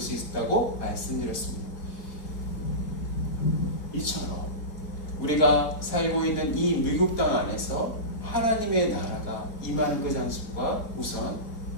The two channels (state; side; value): late; right; 4.2 ms